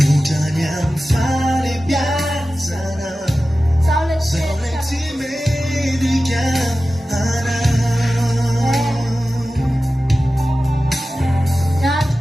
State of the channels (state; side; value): normal; both; correlation 0.95